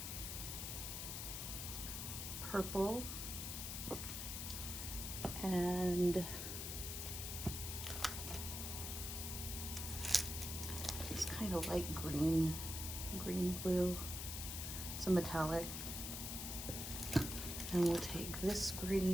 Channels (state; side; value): noise; left; hiss, 4 dB below the sound